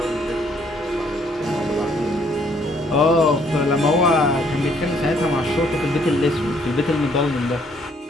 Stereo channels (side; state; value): both; normal; correlation 0.66